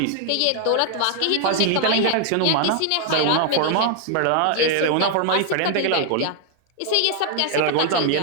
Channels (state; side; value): different; both; correlation 0.00